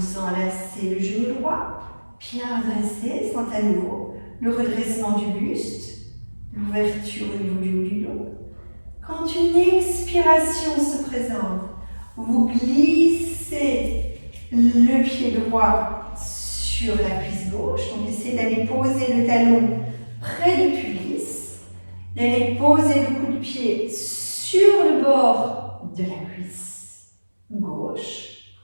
enlacez le genou droit, bien redressé, sentez à nouveau le redressement du buste, l'ouverture au niveau du haut du dos. Quand une expiration se présente, vous glissez le pied droit sur la cuisse gauche. Donc essayez d'aller poser le talon près du pubis, d'aller poser le coup de pied sur le bord de la cuisse gauche.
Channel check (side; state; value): both; inverted; correlation -1.00